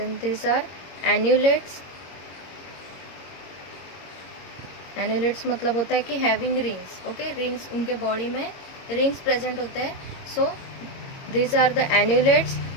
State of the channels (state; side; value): late; right; 22 ms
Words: this are annulates. Annulates मतलब होता है कि हैविंग रिंग्स. ओके, रिंग्स उनके बॉडी में रिंग्स प्रेजेंट होते हैं. So this are the annulates.